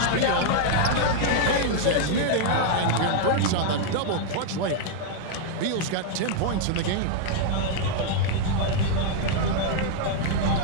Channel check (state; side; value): different; both; correlation 0.00